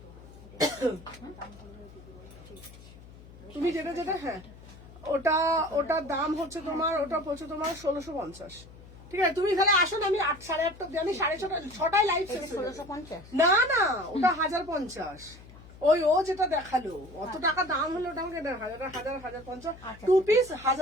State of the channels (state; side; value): noise; left; hum, 19 dB below the sound